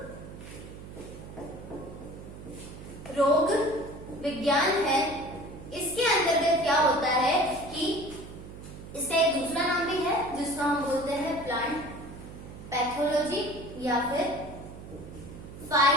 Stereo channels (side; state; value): right; noise; hum, 14 dB below the sound